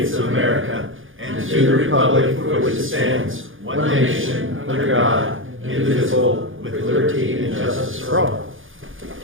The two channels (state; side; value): late; left; 0.58 ms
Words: of America and to the republic for which it stands, one nation, under God, indivisible, with liberty and justice for all.